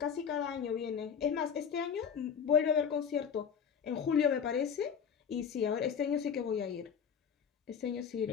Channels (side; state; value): right; quieter; 7.2 dB